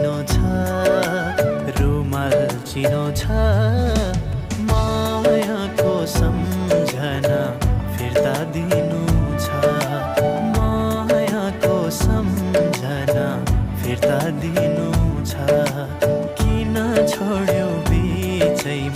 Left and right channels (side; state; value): both; identical; correlation 1.00